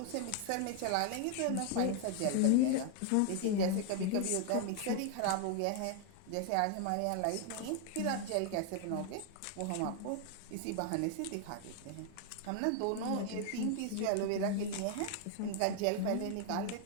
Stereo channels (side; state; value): both; different; correlation 0.00